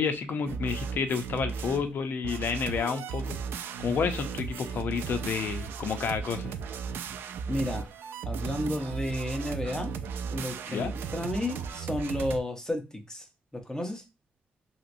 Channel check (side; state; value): both; normal; correlation 0.69